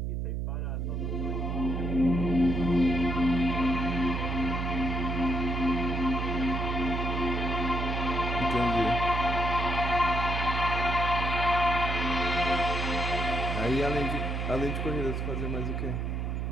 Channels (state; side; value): noise; right; hum, 1 dB below the sound